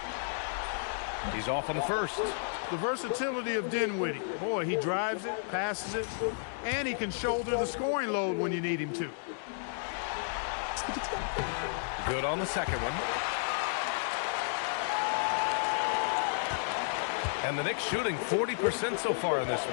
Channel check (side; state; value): right; silent; digital silence